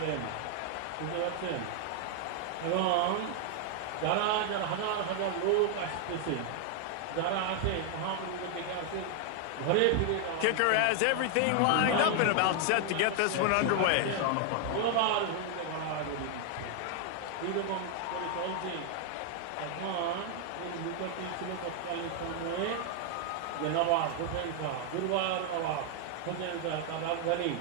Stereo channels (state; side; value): different; both; correlation 0.00